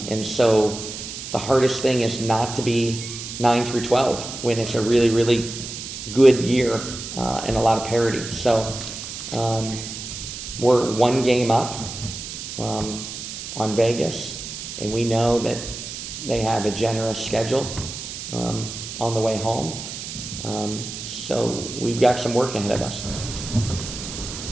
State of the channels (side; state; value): right; noise; hiss, 9 dB below the sound